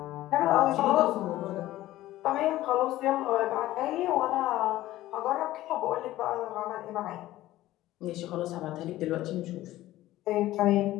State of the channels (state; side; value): quieter; right; 15.5 dB